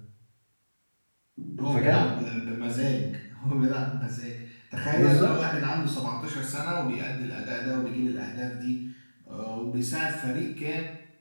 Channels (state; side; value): inverted; both; correlation -1.00